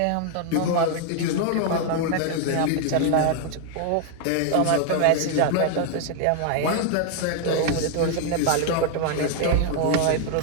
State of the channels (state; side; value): different; both; correlation 0.00